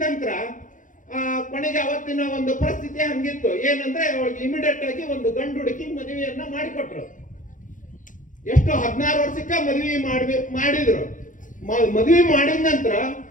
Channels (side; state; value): right; late; 0.38 ms